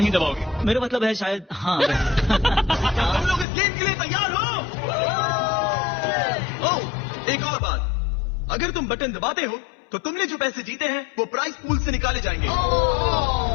दबाओगे? मेरा मतलब है शायद हाँ। क्या तुम लोग इस गेम के लिए तैयार हो? ओह, एक और बात, अगर तुम बटन दबाते हो तो तुमने जो पैसे जीते हैं वो प्राइस पूल से निकाले जाएंगे।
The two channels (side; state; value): right; drops out; at 3.5 s